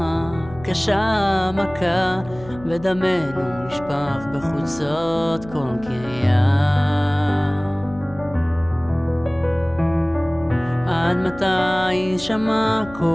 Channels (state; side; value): noise; left; hum, 18 dB below the sound